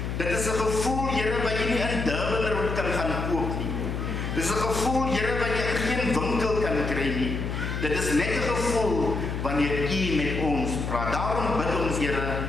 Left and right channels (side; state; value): left; noise; hum, 3 dB below the sound